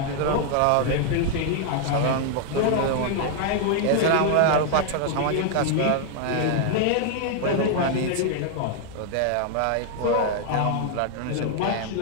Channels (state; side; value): different; both; correlation 0.00